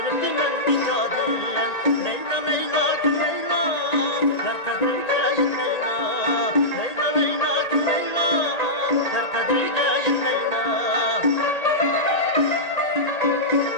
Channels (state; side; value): late; right; 1.8 ms